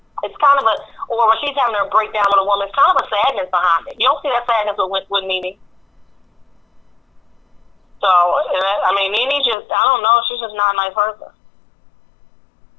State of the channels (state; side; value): drops out; right; at 9.6 s